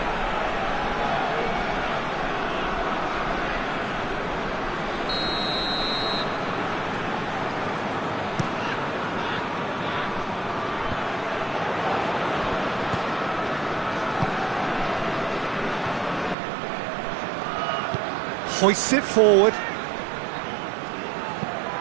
Hoists it forward.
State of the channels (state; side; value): drops out; left; at 16.4 s